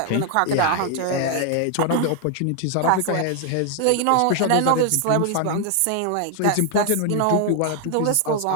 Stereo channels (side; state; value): both; different; correlation 0.00